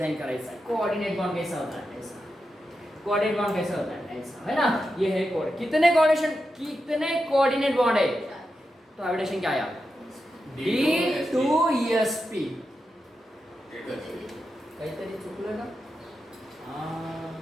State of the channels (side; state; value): both; normal; correlation 0.88